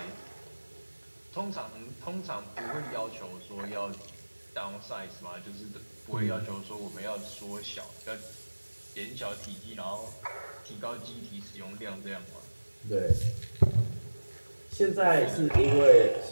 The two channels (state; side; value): inverted; both; correlation -1.00